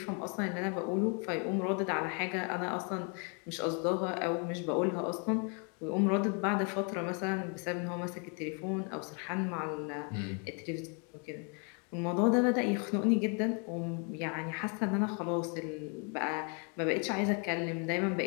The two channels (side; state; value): right; quieter; 37.1 dB